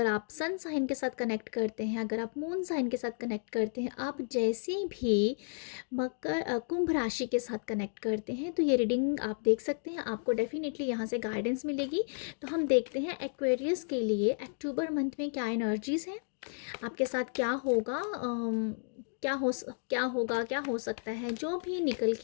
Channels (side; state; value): right; silent; 56 dB below the other